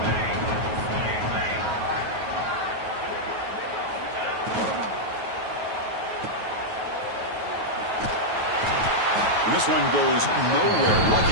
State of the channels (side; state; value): left; late; 9.3 ms